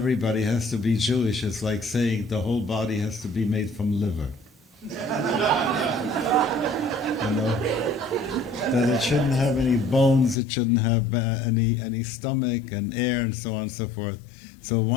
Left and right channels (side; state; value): right; drops out; at 10.4 s